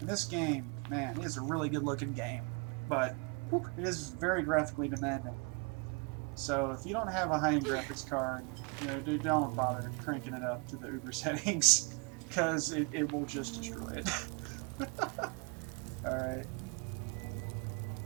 this game, man, it is a really good looking game. But whew, it is very graphically demanding. So if you don't have a high-end graphics card, you know, don't bother cranking it up to the Uber settings, because it will just destroy it. Alright.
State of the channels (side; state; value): left; quieter; 33.4 dB